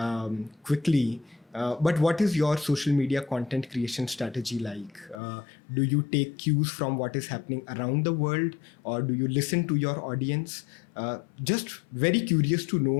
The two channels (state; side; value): drops out; right; at 5.2 s